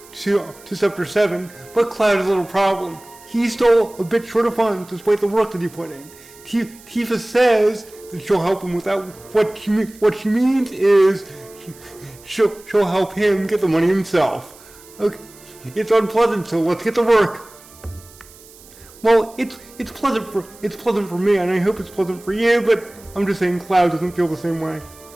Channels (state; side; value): noise; right; hiss, 23 dB below the sound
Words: to Sector 7, but Cloud has a little problem. He's still a bit short of funds despite the work that he put in. Tifa says that she'll help him with that. What she means is she'll help him get the money himself. Okay, it's unpleasant, so let's get to work. Well, it's pleasant for me, and I hope it's pleasant for you, but I'm just saying Cloud doesn't feel the same way.